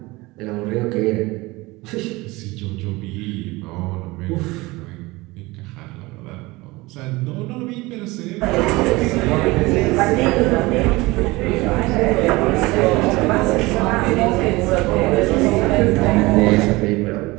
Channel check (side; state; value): left; quieter; 21.8 dB